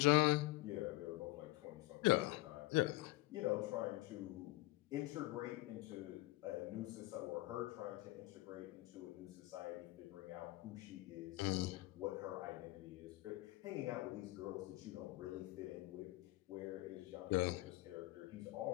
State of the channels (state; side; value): quieter; right; 19.5 dB